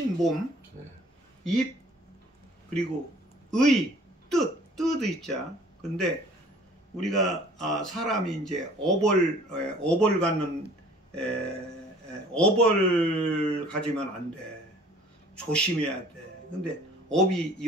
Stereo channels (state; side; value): normal; both; correlation 0.52